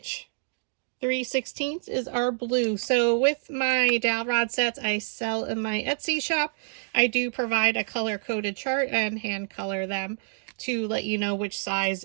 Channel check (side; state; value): left; silent; digital silence